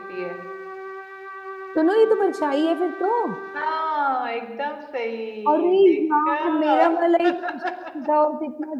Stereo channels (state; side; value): identical; both; correlation 1.00